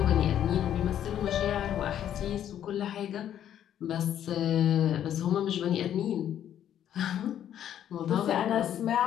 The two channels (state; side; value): quieter; right; 10.4 dB